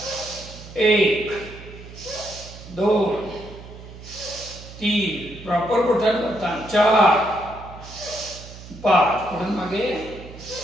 1 2 3 प्रॉपर बोटांवर ताण. 4 5 पुढे मागे.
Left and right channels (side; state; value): right; noise; hum, 16 dB below the sound